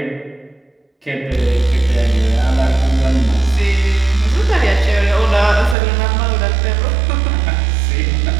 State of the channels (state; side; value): drops out; left; at 5.8 s